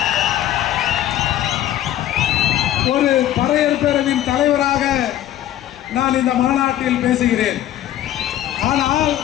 ஒரு பறையர் பேரவையின் தலைவராக நான் இந்த மாநாட்டில் பேசுகிறேன். ஆனால்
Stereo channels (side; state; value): right; quieter; 12.5 dB